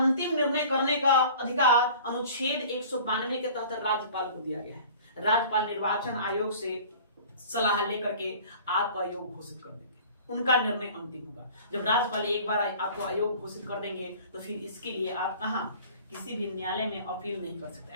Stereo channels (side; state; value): both; inverted; correlation -0.45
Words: निर्णय करने का अधिकार अनुच्छेद 192 के तहत राज्यपाल को दिया गया है। राज्यपाल निर्वाचन आयोग से सलाह लेकर के आपको अयोग्य घोषित कर देंगे, उनका निर्णय अंतिम होगा। जब राज्यपाल एक बार आपको अयोग्य घोषित कर देंगे तो फिर इसके लिए आप कहां, किसी भी न्यायालय में अपील नहीं कर सकते।